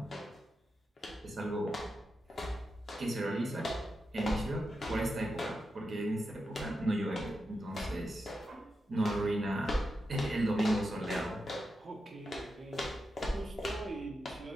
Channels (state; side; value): normal; both; correlation 0.88